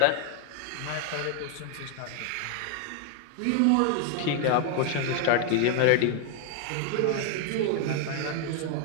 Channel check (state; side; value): different; both; correlation 0.01